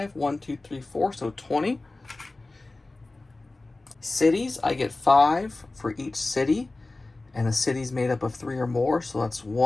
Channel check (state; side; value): quieter; right; 3.1 dB